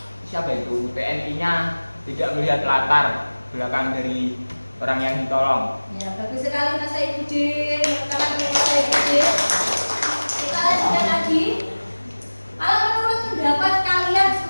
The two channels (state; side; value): inverted; both; correlation -1.00